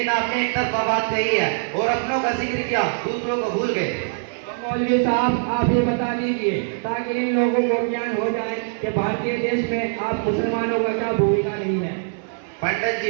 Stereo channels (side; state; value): left; silent; 63 dB below the other